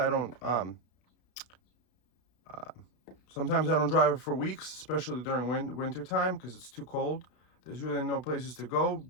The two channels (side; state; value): right; late; 32 ms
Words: don't drive it for weeks, especially during winter time because it's too cold. There's really no places to go.